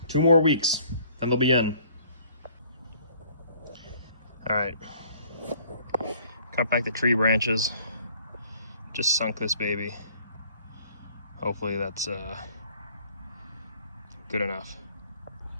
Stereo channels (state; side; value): inverted; both; correlation -0.58